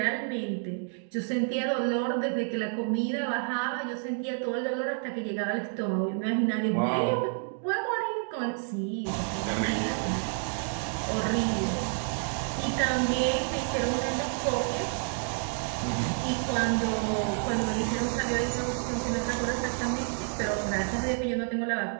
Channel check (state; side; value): silent; left; 58 dB below the other